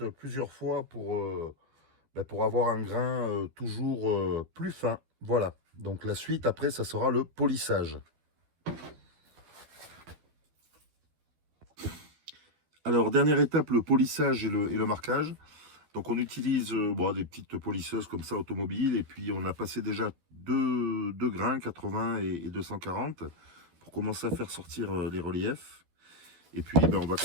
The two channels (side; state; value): left; late; 12 ms